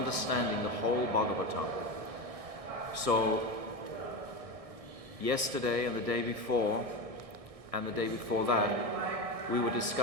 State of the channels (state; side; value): late; left; 1.6 ms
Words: the whole Bhagavatam. So, yesterday and the day before, and the day before that, we were